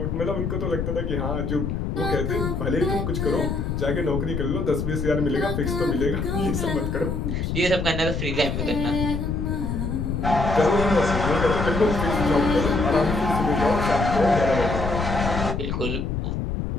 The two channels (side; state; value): left; noise; rumble, 2 dB below the sound